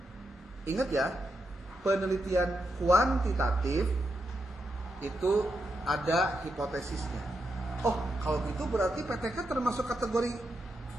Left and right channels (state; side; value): normal; both; correlation 0.84